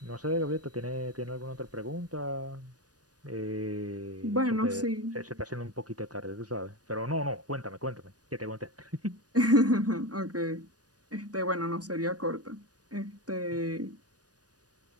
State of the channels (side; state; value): left; late; 0.68 ms